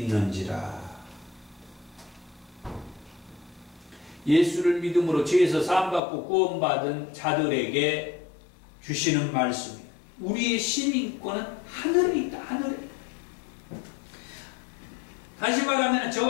예수를 믿음으로 죄에서 사함받고 구원받은 자들에게 주시는 말씀이에요. 우리의 시민권은 하늘에 있다. 하늘에. 다시 말하면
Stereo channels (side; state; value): right; drops out; at 6.0 s